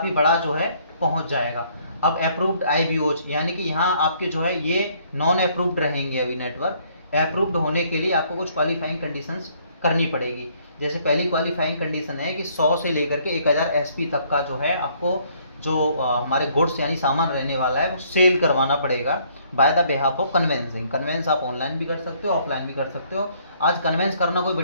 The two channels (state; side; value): inverted; both; correlation -0.64